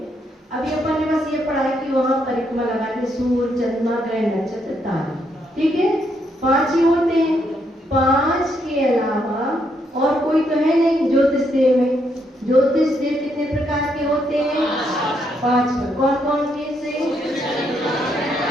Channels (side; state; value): both; normal; correlation 0.76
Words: अभी अपन ने बस ये पढ़ा है कि वहां परिक्रमा लगाते सूर्य, चंद्रमा, ग्रह, नक्षत्र, तारे, ठीक है, 5 ही होते हैं। 5 के अलावा और कोई तो है नहीं ज्योतिष देव में। ज्योतिष देव कितने प्रकार के होते हैं? 5। कौन कौन से?